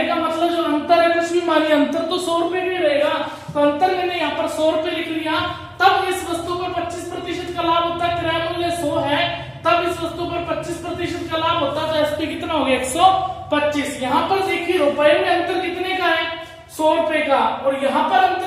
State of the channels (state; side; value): identical; both; correlation 1.00